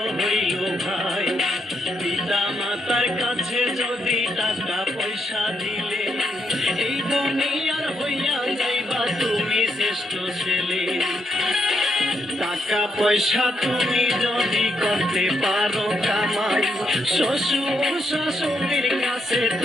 হইল ভাই। পিতা মাতার কাছে যদি টাকা পয়সা দিলে, এই দুনিয়ার হইয়া যাইবা তুমি শ্রেষ্ঠ ছেলে। টাকা পয়সা তুমি যদি করতে পারো কামাই, শ্বশুর শাশুড়ির কাছে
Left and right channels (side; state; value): both; normal; correlation 0.78